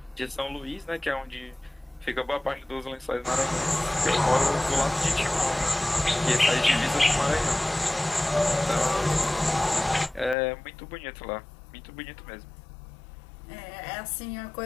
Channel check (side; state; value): right; drops out; at 10.4 s